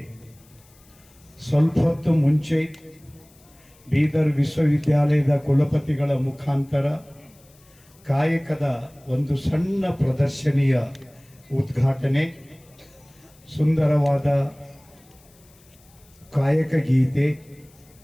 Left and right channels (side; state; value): left; noise; hiss, 29 dB below the sound